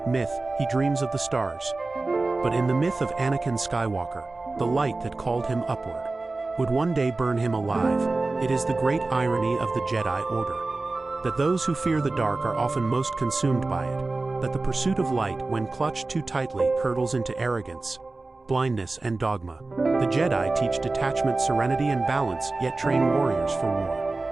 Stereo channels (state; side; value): quieter; left; 3.3 dB